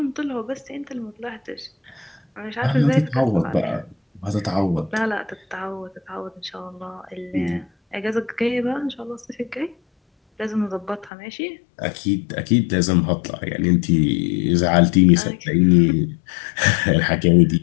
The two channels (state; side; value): drops out; right; at 11.1 s